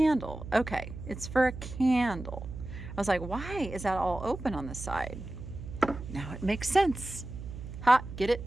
Okay, it's for a candle. I was like, why is that all open on the side? Now it makes sense. Ha, get it?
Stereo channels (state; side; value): noise; right; hum, 10 dB below the sound